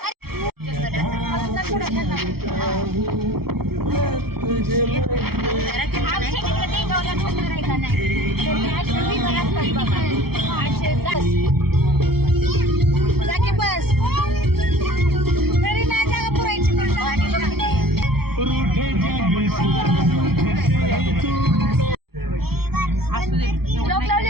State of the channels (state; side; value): late; left; 0.95 ms